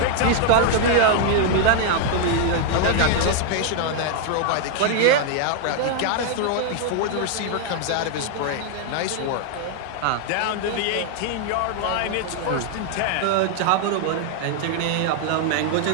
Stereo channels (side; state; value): both; different; correlation 0.00